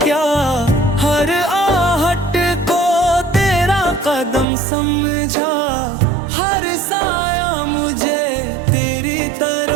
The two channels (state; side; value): drops out; left; at 4.5 s